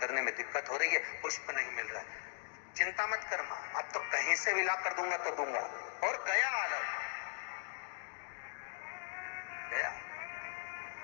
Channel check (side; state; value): right; silent; digital silence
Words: में दिक्कत हो रही है, पुष्प नहीं मिल रहा है। चिंता मत कर मां, अब तो कहीं से भी ला कर दूंगा तो दूंगा। और गया लव, गया।